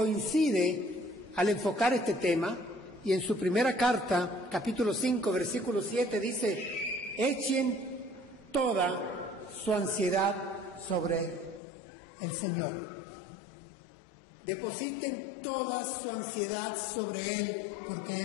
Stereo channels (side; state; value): right; drops out; at 11.6 s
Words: al enfocar este tema, y en su primera carta, capítulo 5, versículo 7, dice: echen toda su ansiedad sobre el Señor. Depositen toda su ansiedad sobre Él, porque